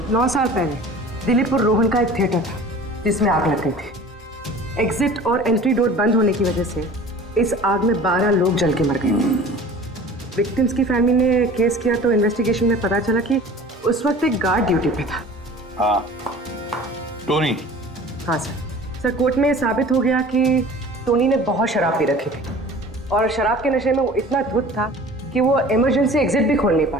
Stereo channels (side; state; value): both; normal; correlation 0.43